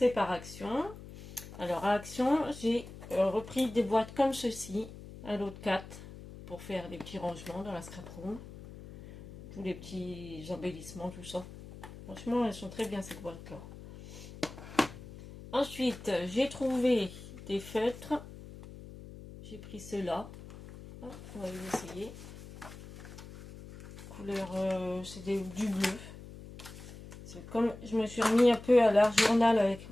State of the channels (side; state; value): left; noise; hum, 15 dB below the sound